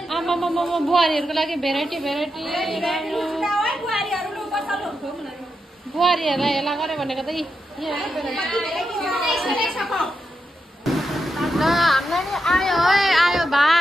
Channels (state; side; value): normal; both; correlation 0.86